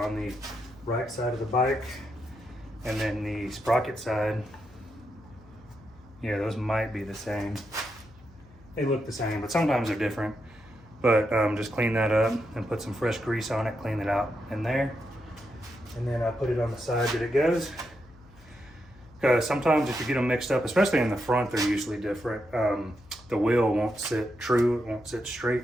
the right side of the bike. And then the sprocket side, yeah, those might be the same. They look the same, but sometimes they're different. But just clean that up and put some fresh grease on it, clean it out in there. And then I put it on the side that it goes. Because sometimes if you get them mixed up, especially in the front, they're usually different. The wheel won't sit true, it won't sit straight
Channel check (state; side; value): noise; left; hum, 25 dB below the sound